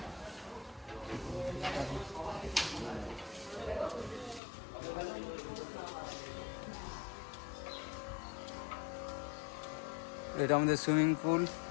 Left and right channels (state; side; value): drops out; right; at 4.4 s